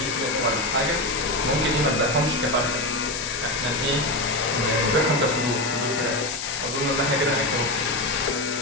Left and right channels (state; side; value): noise; left; hiss, 6 dB below the sound